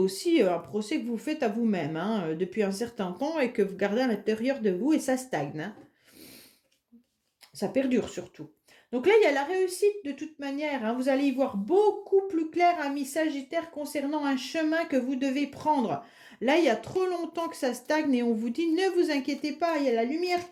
un procès que vous faites à vous-même hein, depuis un certain temps et que vous gardez à l'intérieur de vous et ça stagne. Hein. Ça perdure surtout. Donc là, il y a la réussite de toute manière. Hein. Vous allez y voir beaucoup plus clair, amis Sagittaire, concernant un chemin que vous devez prendre. Là, il y a trop longtemps que ça stagne et on vous dit, ne vous inquiétez pas, il y a la lumière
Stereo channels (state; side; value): identical; both; correlation 1.00